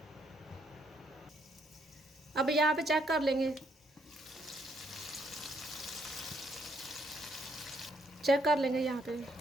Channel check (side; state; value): both; normal; correlation 0.72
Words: अब यहाँ पे चेक कर लेंगे। चेक कर लेंगे यहाँ पे।